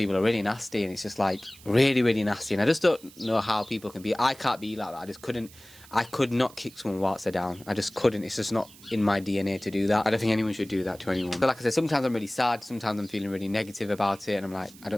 are really nasty, and it's just like really, really nasty. And I just don't know how people can be. I can't be like that. I just couldn't. I could not kick someone whilst they're down. I just couldn't. It's just not in my DNA to do that. I don't think anyone should do that to anyone. But like I said, sometimes I'm really sad. Sometimes I'm feeling really negative about it. And I'm like, I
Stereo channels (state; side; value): noise; right; hiss, 22 dB below the sound